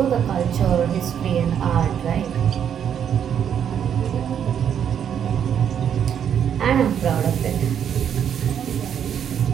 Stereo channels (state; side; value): quieter; left; 8.7 dB